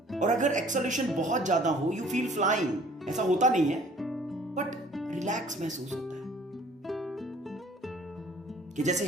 और अगर एक्सेलरेशन बहुत ज्यादा हो, you feel flying. ऐसा होता नहीं है, बट रिलैक्स महसूस होता है कि जैसे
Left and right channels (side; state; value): both; normal; correlation 0.53